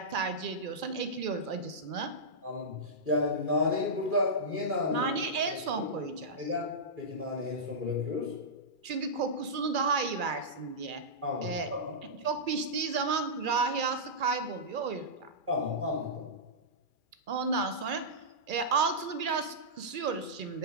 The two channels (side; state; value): left; late; 2.4 ms